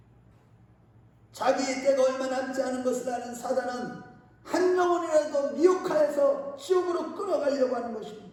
자기의 때가 얼마 남지 않은 것을 아는 사단은 한 영혼이라도 미혹하여서 지옥으로 끌어가려고 하는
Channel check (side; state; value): both; identical; correlation 1.00